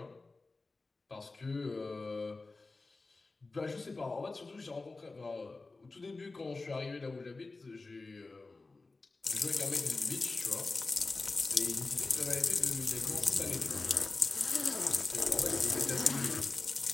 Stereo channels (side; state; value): right; quieter; 3.6 dB